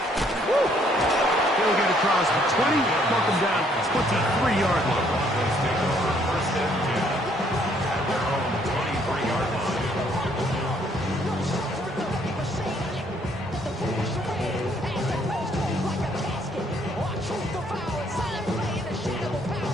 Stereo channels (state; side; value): normal; both; correlation 0.66